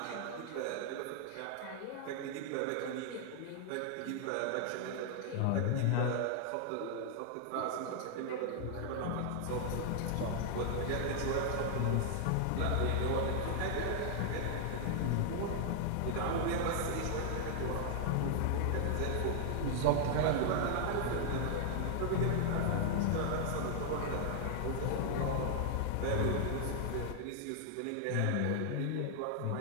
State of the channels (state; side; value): different; both; correlation 0.00